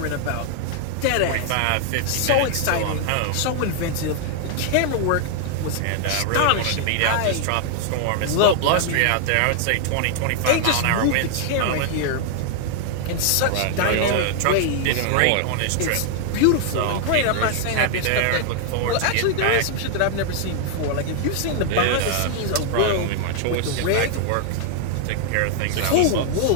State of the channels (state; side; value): different; both; correlation 0.00